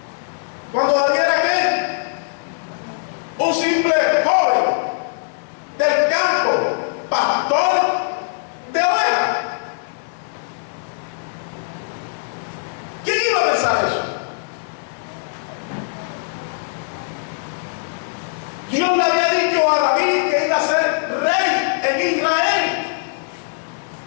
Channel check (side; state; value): right; silent; 65 dB below the other